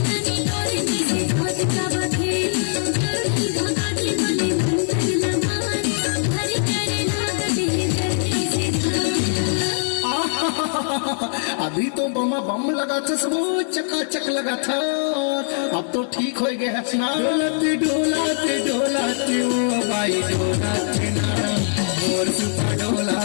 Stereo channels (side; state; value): right; silent; digital silence